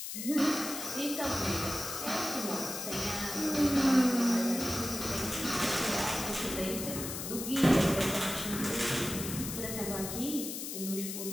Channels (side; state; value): left; noise; hiss, 6 dB below the sound